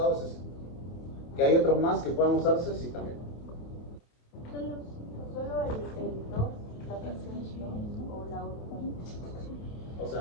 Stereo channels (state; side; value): late; right; 27 ms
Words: es ese. ¿Que hay otros más que puedan usarse? Sí, también. Solo el 2, la fracción 2 o la otra. O